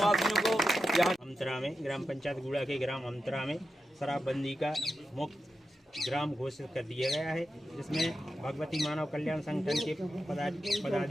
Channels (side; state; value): both; normal; correlation 0.90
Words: को। यहाँ अमतरा में ग्राम पंचायत गुड़ा के ग्राम अमतरा में शराबबंदी का मुक्त ग्राम घोषित कर दिया गया है, जिसमें भगवती मानव कल्याण संगठन के